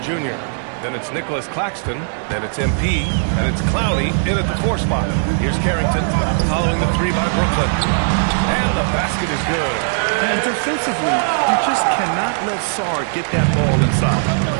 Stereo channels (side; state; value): left; silent; digital silence